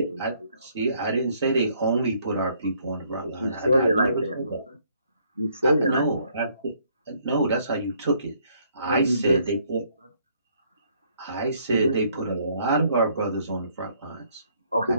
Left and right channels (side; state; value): both; inverted; correlation -0.67